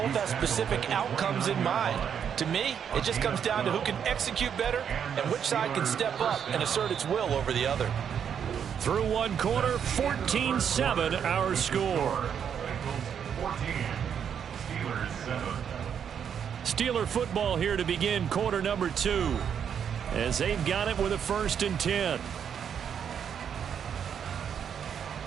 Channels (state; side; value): quieter; left; 8.0 dB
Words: have specific outcomes in mind. To me, it just comes down to who can execute better and which side can step up and assert its will over the other. Through one quarter, 14-7 our score. Bengals 14, Steelers 7. Steeler football here to begin quarter number 2 as they've got it with a 1st and 10.